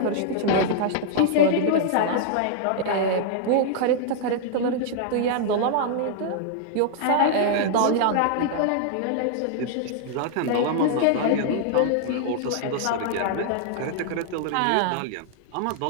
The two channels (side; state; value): both; different; correlation -0.01